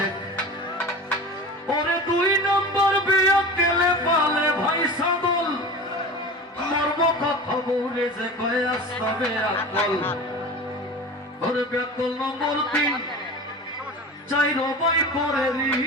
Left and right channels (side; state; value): both; normal; correlation 0.33